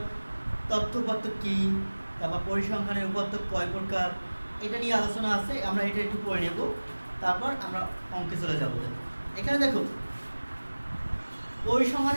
তথ্য উপাত্ত কি, তারপর পরিসংখ্যানের উপাত্ত কয় প্রকার, এটা নিয়ে আলোচনা আছে। আমরা এটা একটু পড়ে নেব, তারপর আমরা অঙ্কে চলে যাব। এখানে দেখো,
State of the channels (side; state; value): both; inverted; correlation -1.00